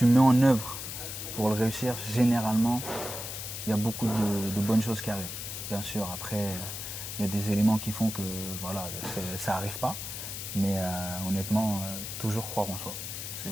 mets en œuvre pour le réussir, généralement, il y a beaucoup de bonnes choses qui arrivent. Bien sûr, après, il y a des éléments qui font que voilà, ça n'arrive pas. Mais honnêtement, toujours croire en soi. C'est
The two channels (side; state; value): left; noise; hiss, 7 dB below the sound